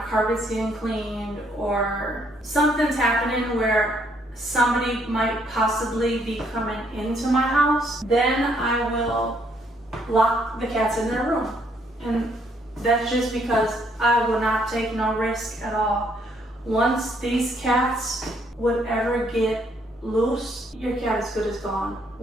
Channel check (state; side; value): normal; both; correlation 0.69